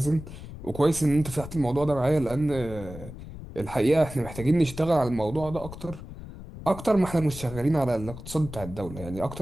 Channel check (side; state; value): left; noise; rumble, 12 dB below the sound